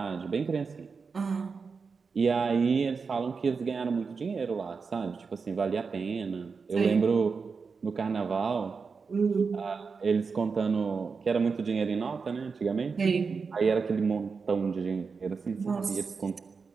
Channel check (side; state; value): left; quieter; 5.1 dB